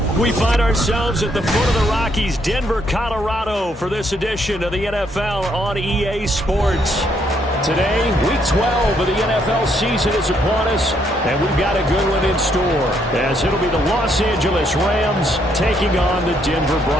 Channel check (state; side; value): normal; both; correlation 0.72